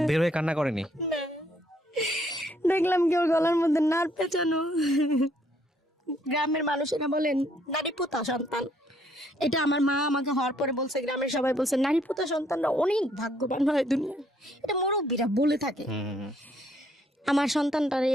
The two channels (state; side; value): normal; both; correlation 0.68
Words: বের হয়ে কান্না করেনি? না। দেখলাম কি ওর গলার মধ্যে নার পেঁচানো। গ্রামের মানুষেরা বলেন নারী পোতা সন্তান, এটা আমার মা আমাকে হওয়ার পরে বলছে, গ্রামের সবাই বলছে নারী পোতা সন্তানরা অনেক ভাগ্যবান হয় দুনিয়ায়, এটা মুরব্বীরা বলে থাকে। আমার সন্তানটার এই